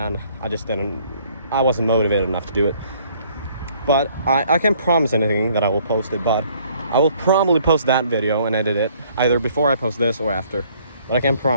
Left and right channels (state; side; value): inverted; both; correlation -0.61